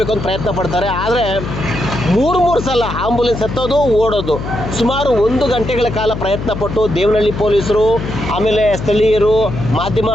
ಅಂತ ಪ್ರಯತ್ನ ಪಡ್ತಾರೆ. ಆದರೆ ಮೂರು ಸಲ ಆಂಬುಲೆನ್ಸ್ ಹತ್ತೋದು, ಓಡೋದು. ಸುಮಾರು 1 ಗಂಟೆಗಳ ಕಾಲ ಪ್ರಯತ್ನ ಪಟ್ಟು ದೇವನಹಳ್ಳಿ ಪೊಲೀಸರು, ಆಮೇಲೆ ಸ್ಥಳೀಯರು, ಮಾಧ್ಯಮ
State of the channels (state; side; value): noise; left; hum, 7 dB below the sound